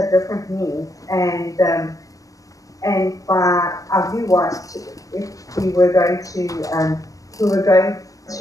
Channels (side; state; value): right; late; 0.17 ms